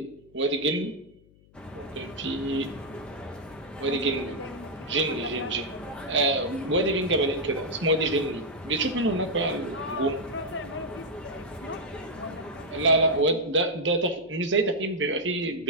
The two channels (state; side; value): noise; left; hum, 28 dB below the sound